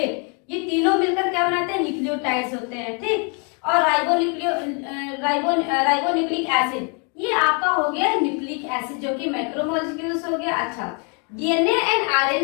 ये तीनों मिलकर क्या बनाते हैं, न्यूक्लियोटाइड्स होते हैं, ठीक। और राइबोन्यूक्लिक एसिड, ये आपका हो गया न्यूक्लिक एसिड जो कि मैक्रोमोलिक्यूल्स हो गया। अच्छा, डीएनए एंड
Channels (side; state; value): right; quieter; 36.8 dB